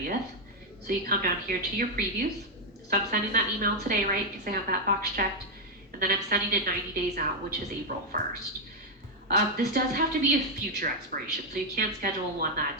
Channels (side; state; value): both; normal; correlation 0.01